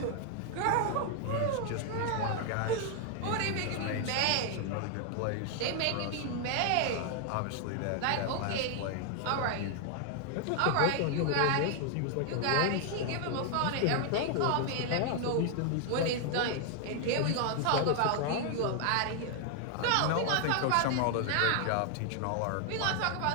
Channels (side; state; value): both; different; correlation 0.00